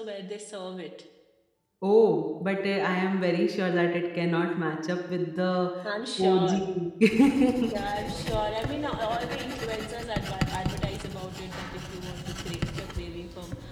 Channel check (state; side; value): identical; both; correlation 1.00